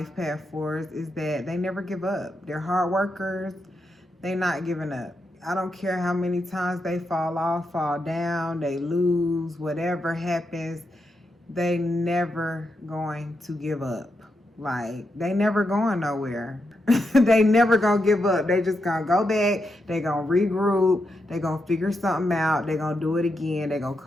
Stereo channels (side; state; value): both; normal; correlation 0.84